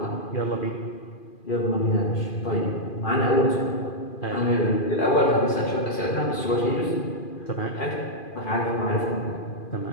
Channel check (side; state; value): right; late; 2.4 ms